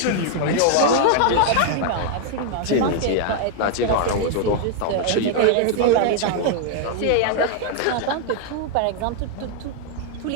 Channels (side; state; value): both; different; correlation 0.00